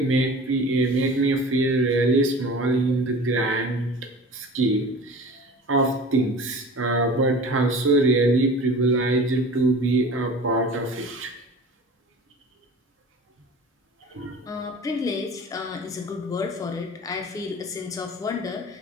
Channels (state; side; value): normal; both; correlation 0.39